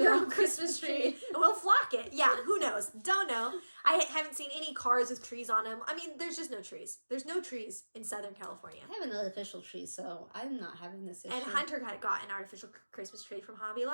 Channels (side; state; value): both; inverted; correlation -1.00